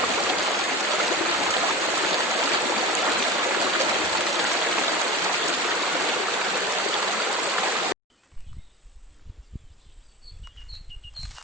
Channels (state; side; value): normal; both; correlation 0.33